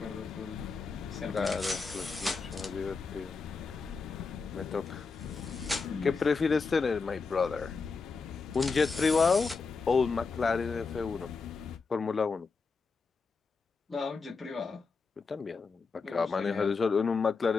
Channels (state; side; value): quieter; right; 4.6 dB